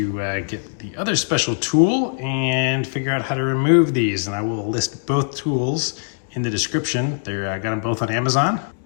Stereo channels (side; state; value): right; silent; digital silence